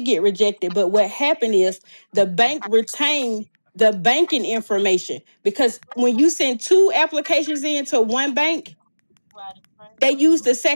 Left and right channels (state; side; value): inverted; both; correlation -1.00